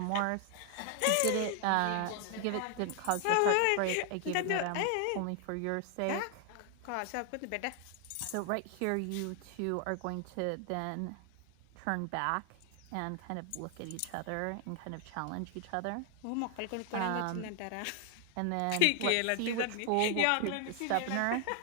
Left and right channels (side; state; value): both; different; correlation 0.00